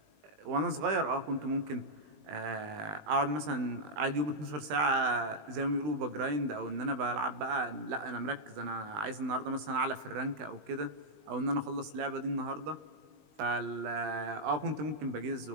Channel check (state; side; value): late; left; 19 ms